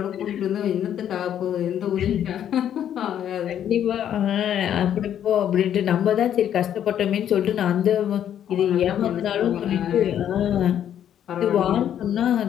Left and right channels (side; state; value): right; quieter; 10.0 dB